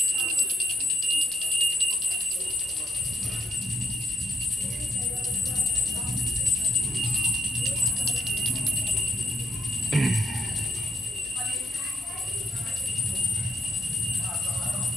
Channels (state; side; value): normal; both; correlation 0.71